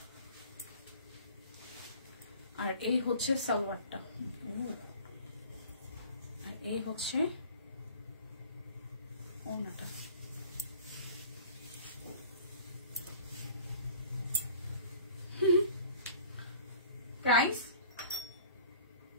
আর এই হচ্ছে সালোয়ারটা, আর এই হচ্ছে ওড়নাটা। প্রাইস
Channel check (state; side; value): inverted; both; correlation -0.46